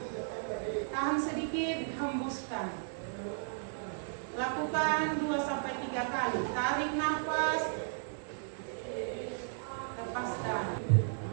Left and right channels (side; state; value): left; silent; 55 dB below the other